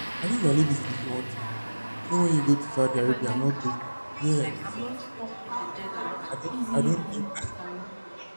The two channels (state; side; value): inverted; both; correlation -1.00